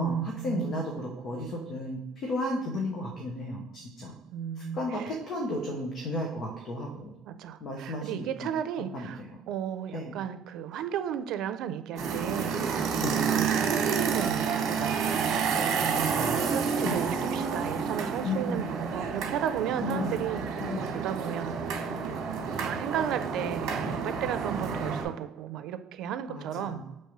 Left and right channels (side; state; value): left; quieter; 4.9 dB